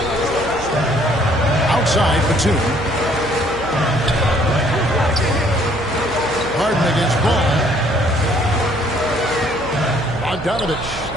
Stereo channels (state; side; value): noise; right; hum, 13 dB below the sound